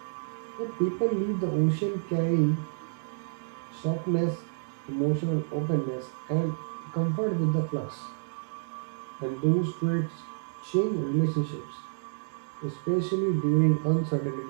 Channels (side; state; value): left; silent; digital silence